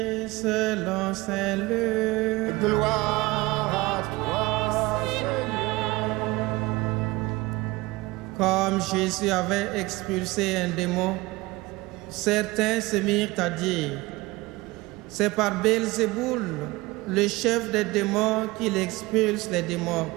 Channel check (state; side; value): quieter; left; 21.2 dB